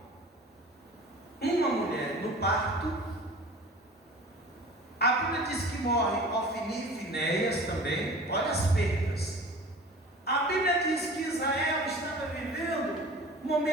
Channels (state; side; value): normal; both; correlation 0.41